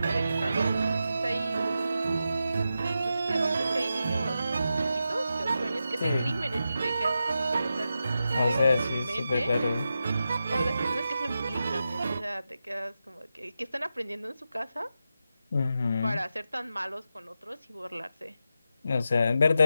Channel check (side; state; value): both; inverted; correlation -0.89